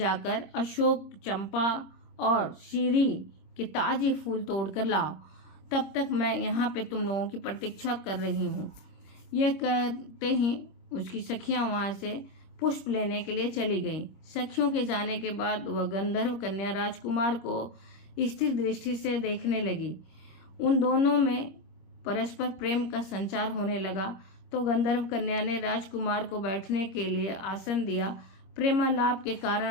अशोक, चंपा और शीरी के ताजे फूल तोड़कर लाओ, तब तक मैं यहाँ पे तुम लोगों की प्रतीक्षा कर रही हूँ। यह कहते ही उसकी सखियां वहां से पुष्प लेने के लिए चली गईं। सखियों के जाने के बाद वह गंधर्व कन्या राजकुमार को स्थिर दृष्टि से देखने लगी। उन दोनों में परस्पर प्रेम का संचार होने लगा तो गंधर्व कन्या ने राजकुमार को बैठने के लिए आसन दिया। प्रेमालाप के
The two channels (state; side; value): late; right; 26 ms